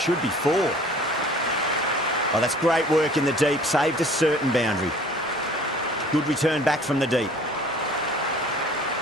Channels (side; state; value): both; normal; correlation 0.50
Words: be four. Oh, that's great work in the deep. Saved a certain boundary. Good return back from the deep.